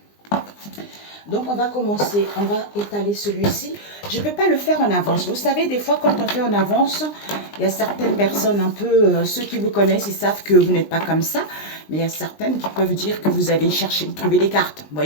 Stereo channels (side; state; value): right; late; 20 ms